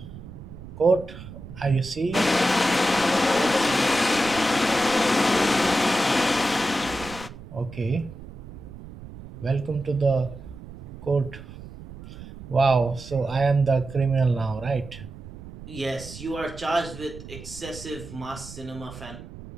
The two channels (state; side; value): noise; right; rumble, 14 dB below the sound